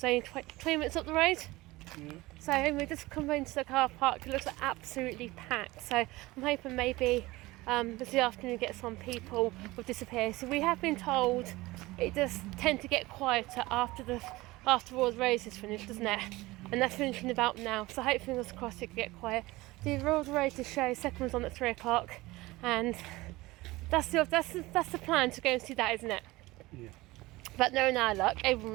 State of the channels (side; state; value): left; quieter; 20.1 dB